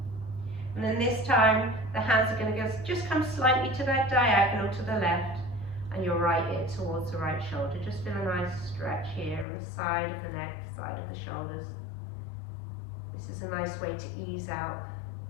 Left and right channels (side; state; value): right; drops out; at 9.5 s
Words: And then this time, the hands are going to just come slightly to that diagonal to the left, and your right ear towards the right shoulder. Just feel a nice stretch here on the side of the neck, side of the shoulders. This is a nice way to ease out